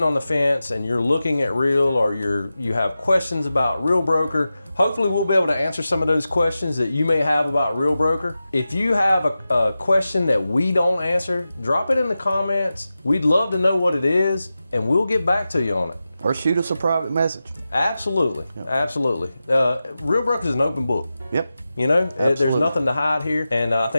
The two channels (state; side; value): inverted; both; correlation -0.93